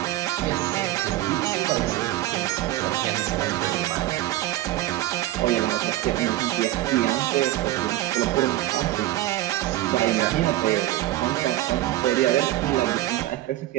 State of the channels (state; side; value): quieter; left; 15.3 dB